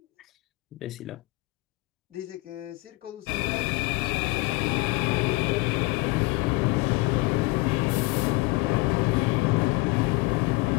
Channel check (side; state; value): right; quieter; 22.7 dB